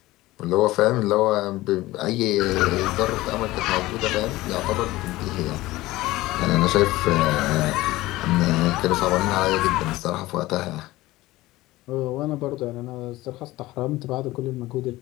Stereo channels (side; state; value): right; quieter; 18.2 dB